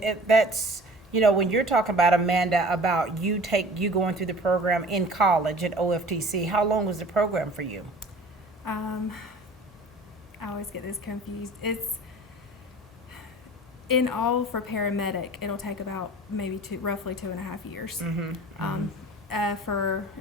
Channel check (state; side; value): normal; both; correlation 0.44